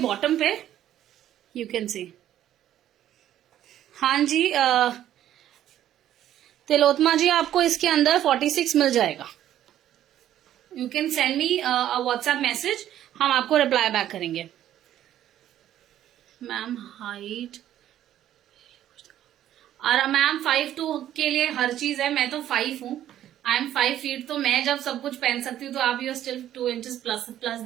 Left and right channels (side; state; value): left; quieter; 11.8 dB